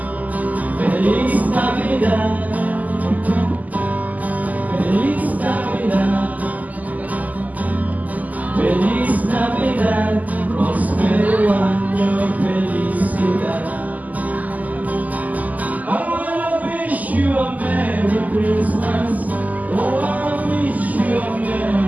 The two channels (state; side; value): late; left; 0.079 ms